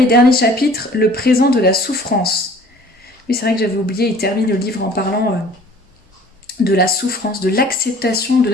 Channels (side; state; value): both; normal; correlation 0.51